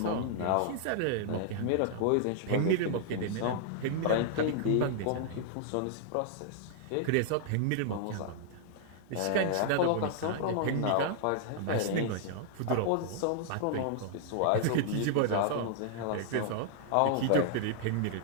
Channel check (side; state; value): both; different; correlation -0.01